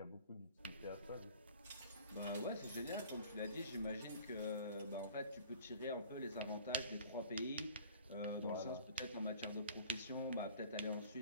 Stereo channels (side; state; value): both; inverted; correlation -0.48